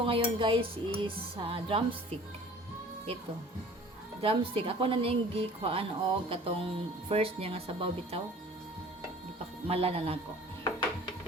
ngayon guys is drumstick. Ito. Drumstick. Ako na ning gikuhaan og katong first niya nga sabaw bitaw. Malanan ako.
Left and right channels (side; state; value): both; normal; correlation 0.47